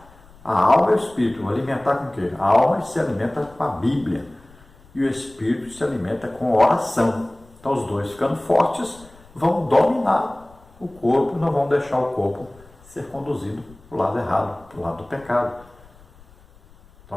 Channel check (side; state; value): left; noise; rumble, 26 dB below the sound